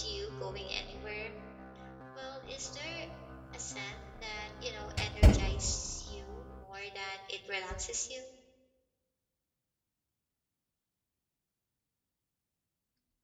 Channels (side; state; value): both; identical; correlation 1.00